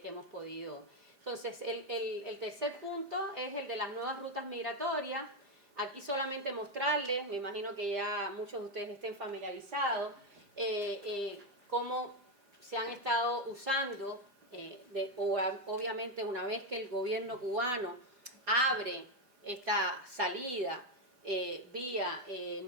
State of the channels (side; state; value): left; late; 5.0 ms